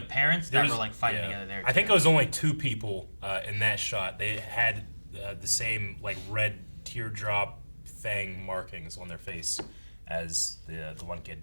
parents there that was- were like fighting yeah. together there. I think too. it was only 2 people in that shot. They had the same like red teardrop thing markings on their face as the one kid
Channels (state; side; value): inverted; both; correlation -1.00